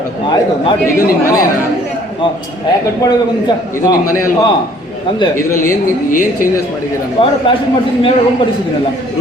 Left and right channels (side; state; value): both; normal; correlation 0.58